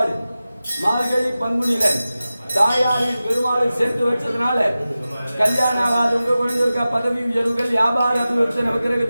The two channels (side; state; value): both; inverted; correlation -0.95